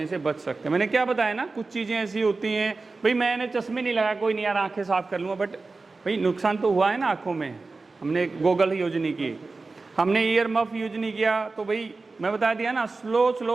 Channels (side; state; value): left; quieter; 3.8 dB